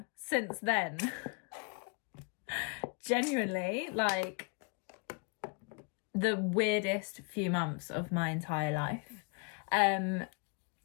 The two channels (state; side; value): quieter; right; 36.0 dB